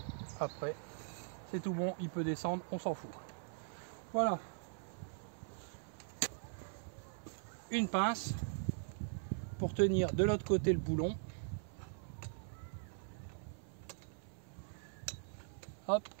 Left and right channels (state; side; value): silent; left; 50 dB below the other